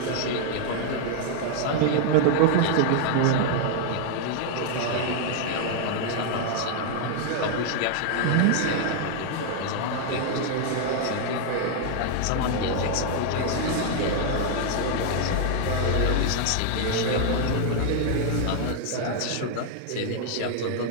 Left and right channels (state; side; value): different; both; correlation 0.00